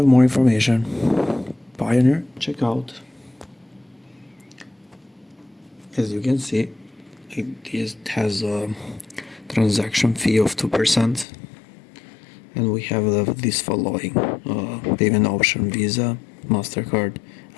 more information. Payoneer checkout. As you can see, it has a transaction fee of 2%, and we have this following payment option: Visa, MasterCard,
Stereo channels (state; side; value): drops out; right; at 11.2 s